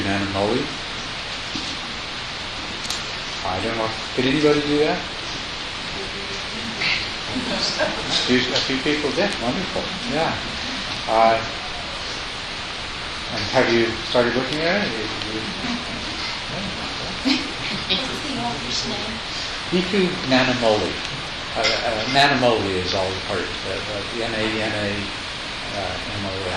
Nanamoli. I don't know. Did anybody do that? A few people did. Wonderful. Yeah. And have you started looking at it? What's the author's name? Bhikkhu Nanamoli. Nanamoli is all part of Nanamoli.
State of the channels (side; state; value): both; identical; correlation 1.00